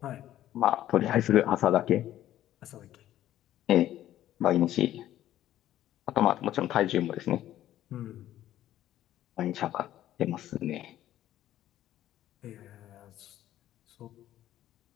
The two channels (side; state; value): right; quieter; 12.9 dB